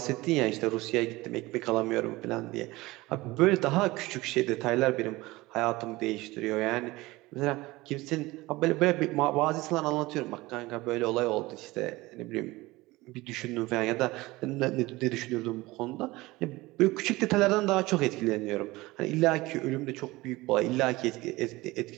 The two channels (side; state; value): left; quieter; 20.3 dB